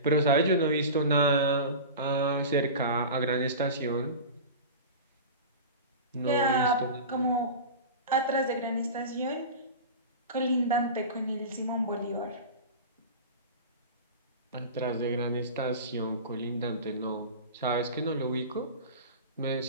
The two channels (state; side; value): inverted; both; correlation -0.30